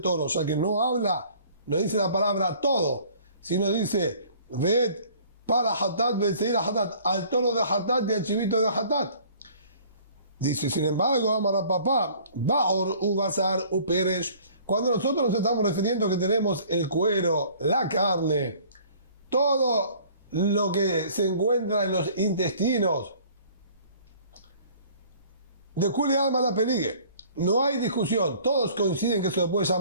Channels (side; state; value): both; inverted; correlation -0.52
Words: toro, ya que no habla, no dice la palabra todo, sino dice, ved para Hatat, Betseir Hatat, al toro de Hatat y al chivito de Hatat. Dice, sin embargo, Amara papá, Baor, Ubazar, Uperesh, cuando nosotros nos estamos refiriendo que tenemos el cuero, la carne, todo lo que se encuentra en los intestinos, de Kuli Alma la Peligue, no hay discusión, todos coinciden que se le puede